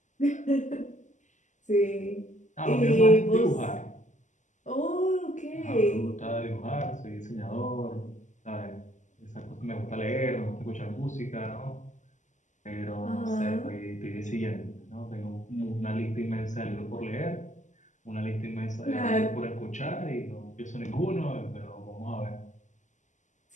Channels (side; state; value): right; late; 0.35 ms